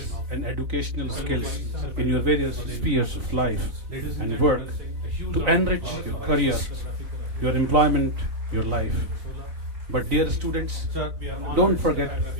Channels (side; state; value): left; late; 4.0 ms